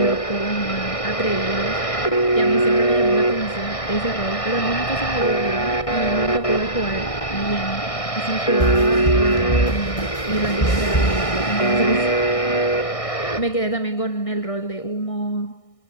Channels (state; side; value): late; right; 1.6 ms